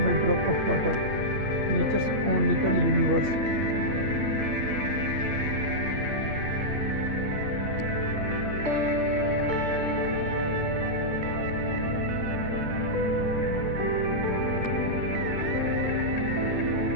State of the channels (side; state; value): left; late; 8.7 ms